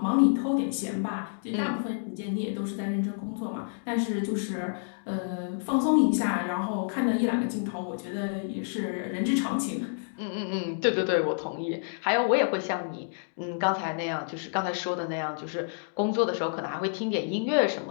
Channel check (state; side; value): silent; right; digital silence